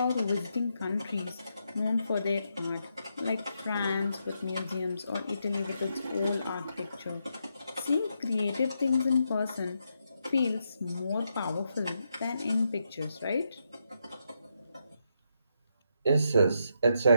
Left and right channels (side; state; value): both; inverted; correlation -0.81